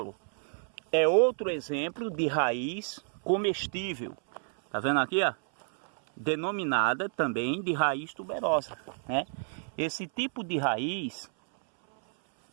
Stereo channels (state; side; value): silent; left; 58 dB below the other